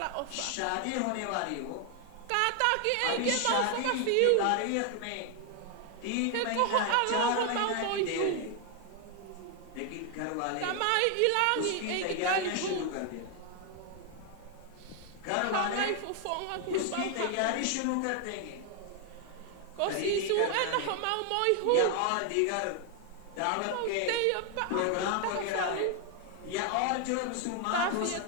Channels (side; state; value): both; different; correlation 0.00